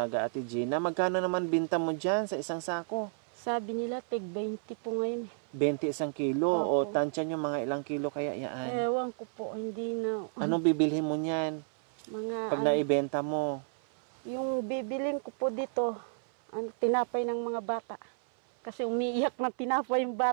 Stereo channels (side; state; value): left; silent; 57 dB below the other